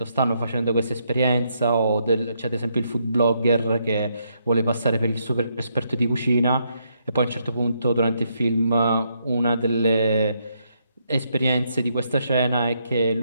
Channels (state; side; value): inverted; both; correlation -0.76